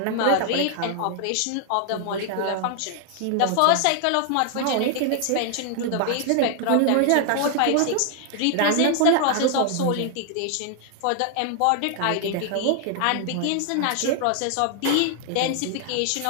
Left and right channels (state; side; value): different; both; correlation 0.00